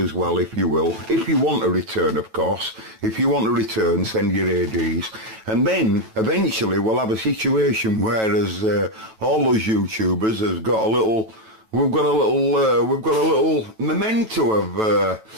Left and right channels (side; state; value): left; late; 9.1 ms